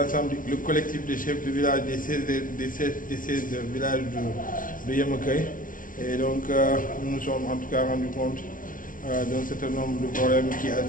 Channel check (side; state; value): right; late; 0.39 ms